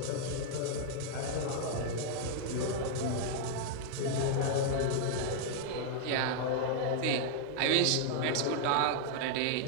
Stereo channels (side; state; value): both; different; correlation 0.00